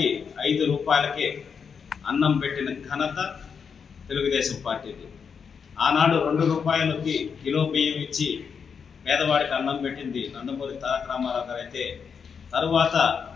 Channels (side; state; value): right; quieter; 6.4 dB